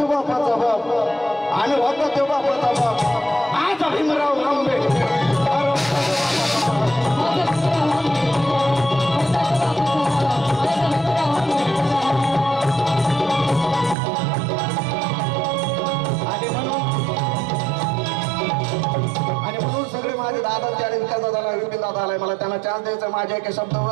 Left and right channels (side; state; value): left; drops out; at 14.0 s